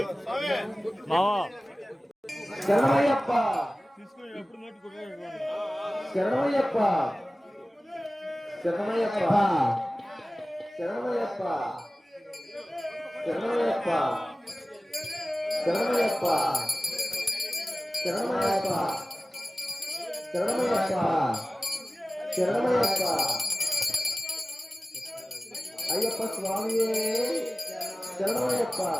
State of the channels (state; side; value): normal; both; correlation 0.97